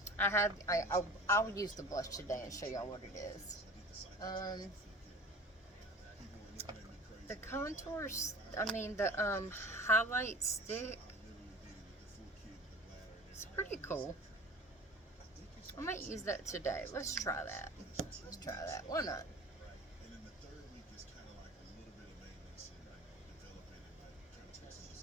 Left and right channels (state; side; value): normal; both; correlation 0.41